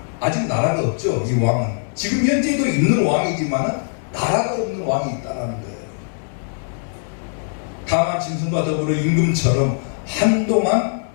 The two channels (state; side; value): silent; right; digital silence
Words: 아직 나라가 없죠. 이 왕은 지금 현재도 있는 왕이지만 나라가 없는 왕이 있다는 거예요. 다만 짐승과 더불어 임금처럼 한동안